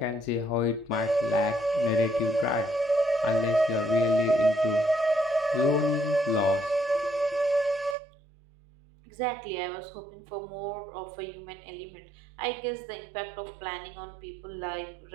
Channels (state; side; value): drops out; left; at 8.0 s